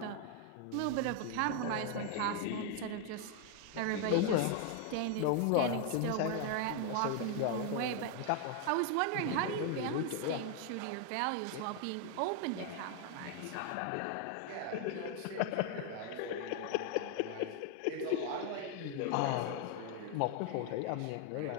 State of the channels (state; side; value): different; both; correlation 0.00